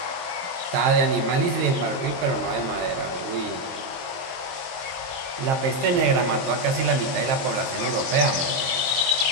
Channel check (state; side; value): late; left; 22 ms